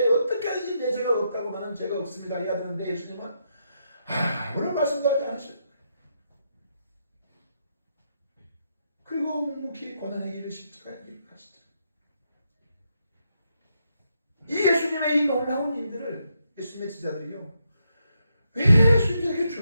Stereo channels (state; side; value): inverted; both; correlation -0.80